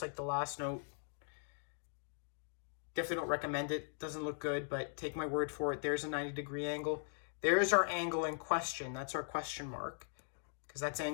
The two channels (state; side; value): silent; right; digital silence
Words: like the last note. Definitely don't recommend it. Doesn't look good, but take my word for it. There's a 90-degree angle. There's our angle in question. That's our question mark, because that's